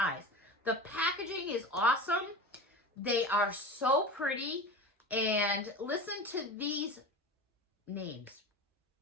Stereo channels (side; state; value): both; normal; correlation 0.30